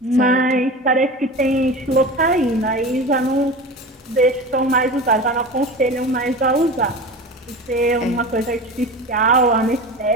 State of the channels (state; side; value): normal; both; correlation 0.31